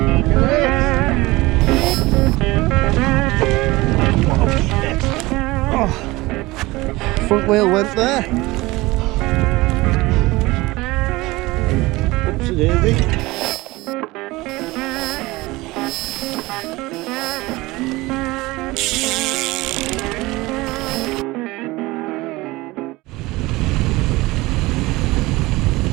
at this! Oh, front wheel went there. Oopsie daisy.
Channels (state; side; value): quieter; left; 20.7 dB